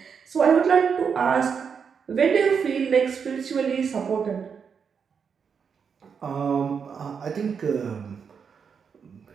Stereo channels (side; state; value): left; quieter; 6.4 dB